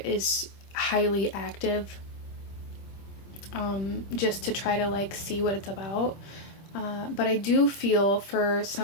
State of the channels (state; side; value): late; right; 25 ms